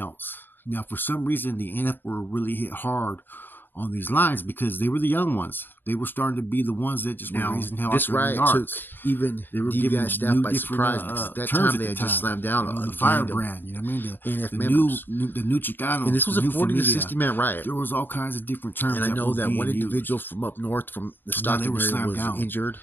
Now, for some reason, the NF were really hit hard on these lines because they were the young ones. They were starting to be the ones that just were raising hell. This riot took even D.V.I staff by surprise because at that time they had just slammed down the firebrand. You know what I mean? The new Chicano. And this was a 40 to 60 man riot. There was all kinds of different terms. And I know that one individual from up north, from the Stockton area, was injured,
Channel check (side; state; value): right; late; 0.094 ms